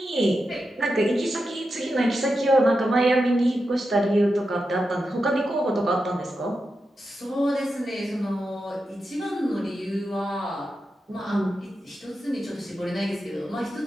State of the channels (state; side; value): normal; both; correlation 0.89